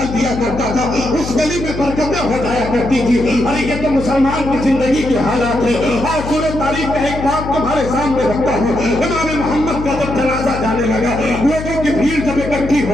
دیا کرتا تھا اس گلی میں برکتیں ہو جایا کرتی تھی. ارے یہ تو مسلمان کی زندگی کے حالات ہے. اور سورہ تاریخ کا ایک بات تمہارے سامنے رکھتا ہوں. امام محمد کا جب جنازہ جانے لگا, لوگوں کی بھیڑ جب اکٹھی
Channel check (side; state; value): left; noise; hum, 8 dB below the sound